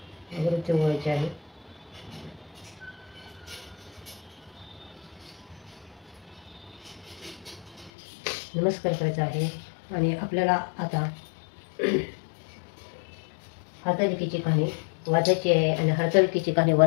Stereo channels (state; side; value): drops out; right; at 7.9 s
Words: अगरबत्ती ओवाळायची आहे. नमस्कार करायचा आहे. आणि आपल्याला आता हरतालिकेची कहाणी वाचायची आहे. आणि हरतालिकेची कहाणी